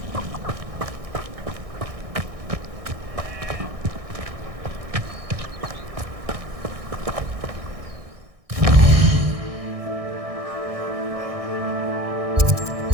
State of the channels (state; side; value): late; left; 1.6 ms